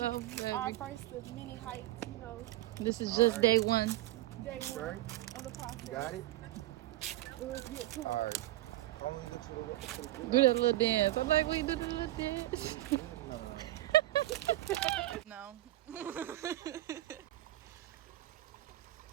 baby. Our first of many heights, you know. This is just day one. Day one of the process. You got it? Let's get to it. All right. I'm gonna get to the Do that little dance. I'm like, we do the little dance. No.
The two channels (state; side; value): quieter; left; 16.4 dB